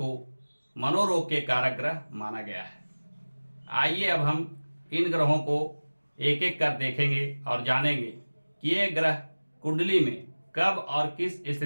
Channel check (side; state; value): both; inverted; correlation -1.00